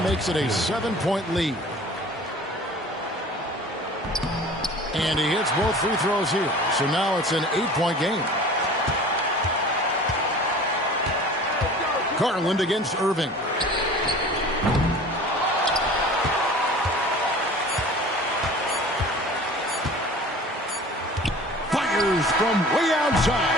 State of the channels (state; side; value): normal; both; correlation 0.43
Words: makes it a 7-point lead. And he hits both free throws here. So now it's an 8-point game. Garland against Irving. Fires from way